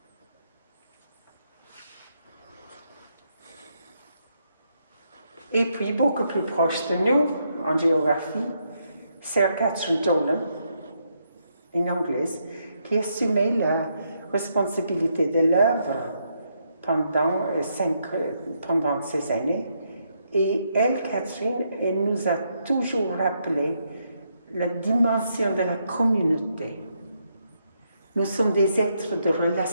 Et puis, beaucoup plus proche de nous, en géographie, Sir Catherine Dolan, une Anglaise, qui assumait la responsabilité de l'œuvre pendant ces années. Et elle, Catherine, elle nous a toujours rappelé la dimension de la communauté. Nous sommes des êtres de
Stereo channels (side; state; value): both; inverted; correlation -0.78